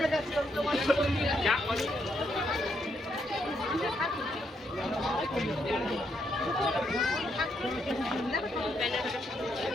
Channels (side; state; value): both; normal; correlation 0.77